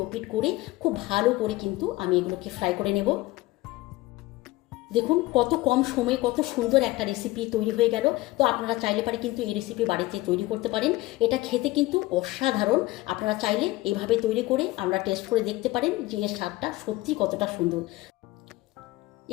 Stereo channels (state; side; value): quieter; right; 19.2 dB